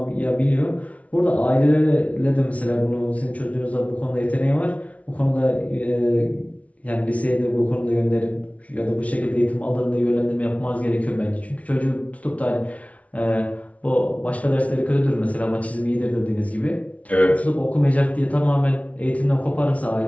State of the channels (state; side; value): late; right; 0.066 ms